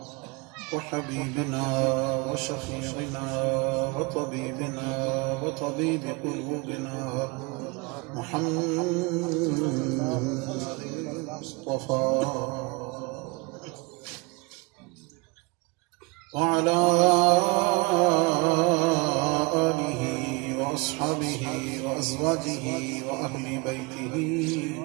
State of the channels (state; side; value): quieter; left; 26.8 dB